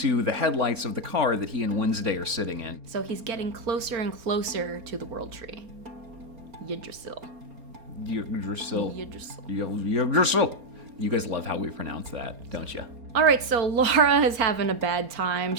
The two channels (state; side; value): late; left; 4.3 ms